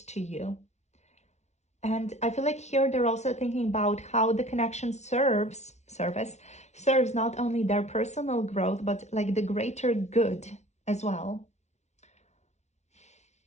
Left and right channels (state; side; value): late; right; 0.32 ms